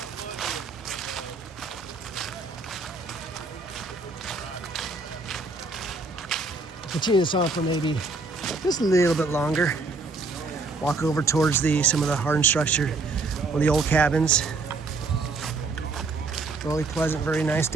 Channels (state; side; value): quieter; left; 3.7 dB